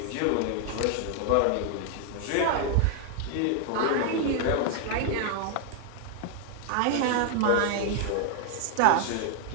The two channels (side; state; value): both; different; correlation 0.00